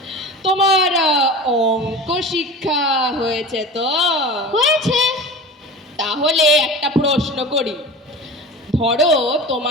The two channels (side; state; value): both; normal; correlation 0.34